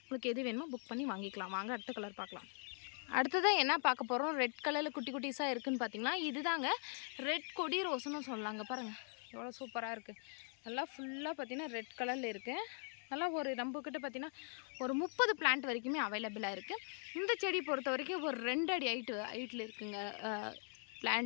உங்களுக்கு எது வேணுமோ புக் பண்ணி வாங்கிக்கலாம். வாங்க அடுத்த கலர் பார்க்கலாம். அடுத்ததாக என்ன பார்க்க போகிறோம், ரெட் கலரில் குட்டி குட்டிஸாக இருக்குதுன்னு பார்த்தீங்கன்னா இதுதாங்க ரெட் கொடி ரோஸ்ன்னு சொல்லலாங்க. பாருங்கள் எவ்வளோ சூப்பராக இருக்குது. நல்லா ஃபுல்லாக பார்த்திங்கன்னா ரெட் கலரில் இருக்குது. நல்லா ஒரு நம்மக்கிட்ட பார்த்திங்கன்னா ஒரு 30 பிளான்ட் வரைக்குமே அவைலபிளாக இருக்குது. இந்த செடி பொறுத்த வரைக்கும் ஒரு 2 அடி ஹைட்டில் இருக்குங்க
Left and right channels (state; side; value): silent; right; 50 dB below the other